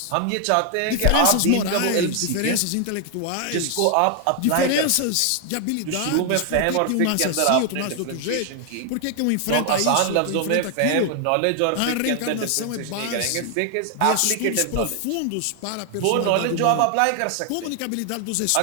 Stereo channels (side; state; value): both; different; correlation 0.00